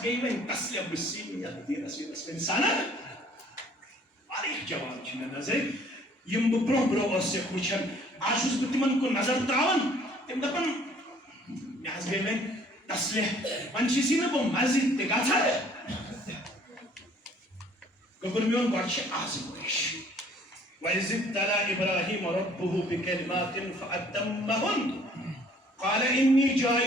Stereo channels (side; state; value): both; normal; correlation 0.57